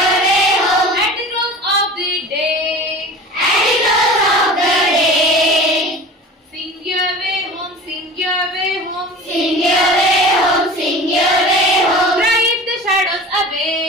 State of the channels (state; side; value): normal; both; correlation 0.37